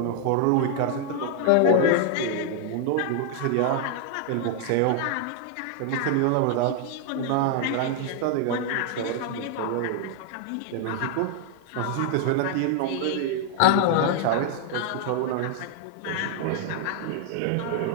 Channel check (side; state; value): both; different; correlation 0.00